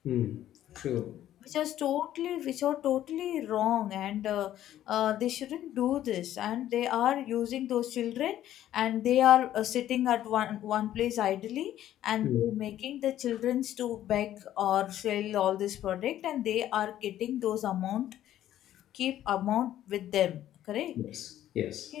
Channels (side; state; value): right; quieter; 12.3 dB